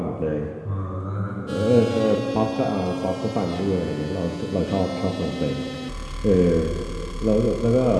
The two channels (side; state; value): both; identical; correlation 1.00